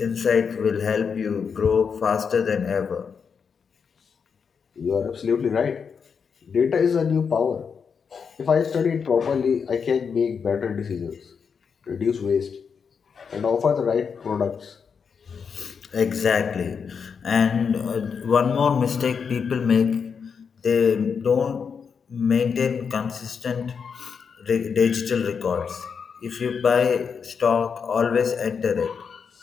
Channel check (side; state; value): right; quieter; 6.2 dB